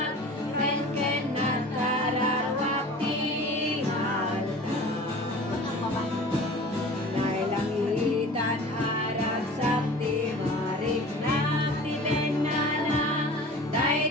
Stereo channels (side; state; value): both; normal; correlation 0.41